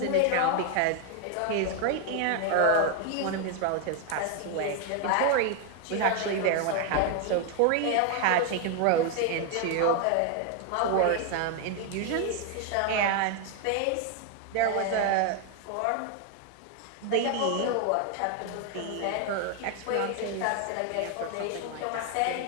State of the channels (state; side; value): different; both; correlation 0.01